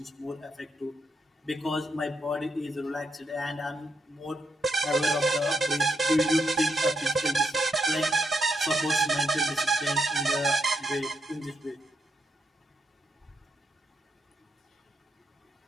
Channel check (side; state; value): both; normal; correlation 0.80